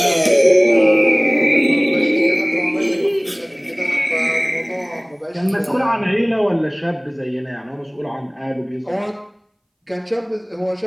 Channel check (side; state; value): both; identical; correlation 1.00